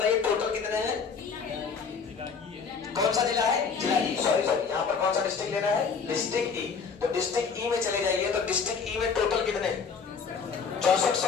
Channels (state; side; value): quieter; right; 5.7 dB